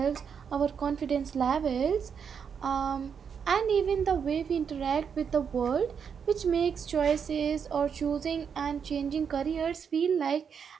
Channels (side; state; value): left; quieter; 6.9 dB